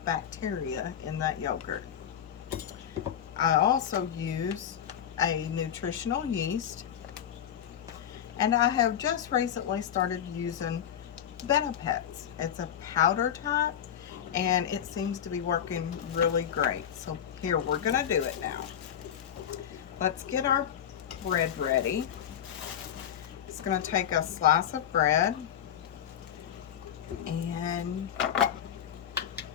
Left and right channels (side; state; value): right; quieter; 9.4 dB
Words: bacteria in that yogurt. I also use a nutritional yeast, and I have just recently started using Benefits. It's a powder type, and it seems to be working really great. So here, we're gonna do it now. Let's get our bread ready. It's gonna take a slice of bread, and we're